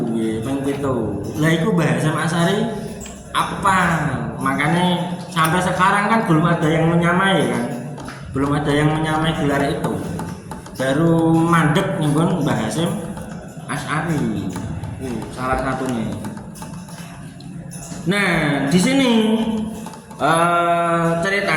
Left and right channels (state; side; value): identical; both; correlation 1.00